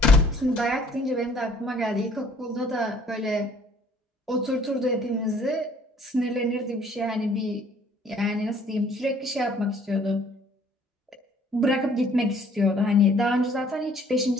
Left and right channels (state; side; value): normal; both; correlation 0.58